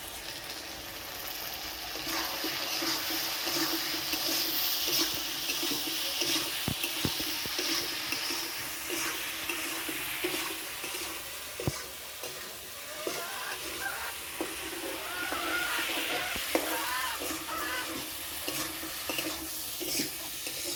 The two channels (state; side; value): identical; both; correlation 1.00